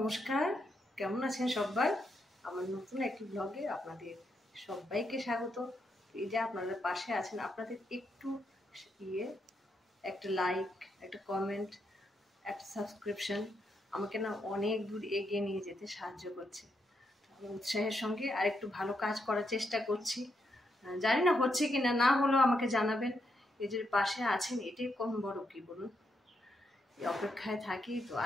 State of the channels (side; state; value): both; normal; correlation 0.81